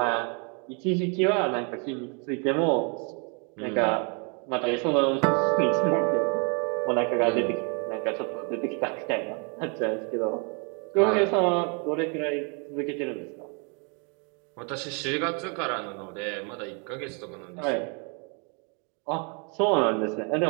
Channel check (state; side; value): quieter; left; 36.3 dB